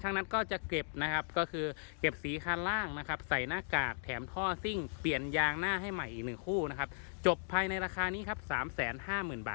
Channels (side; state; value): right; silent; digital silence